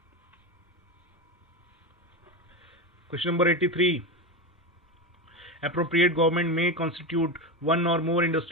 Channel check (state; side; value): normal; both; correlation 0.18